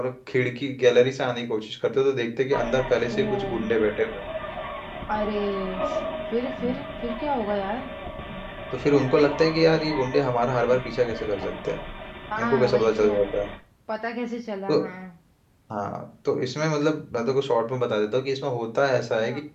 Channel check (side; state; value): both; identical; correlation 1.00